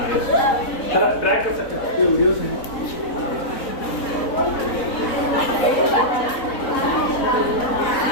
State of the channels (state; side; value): late; right; 4.0 ms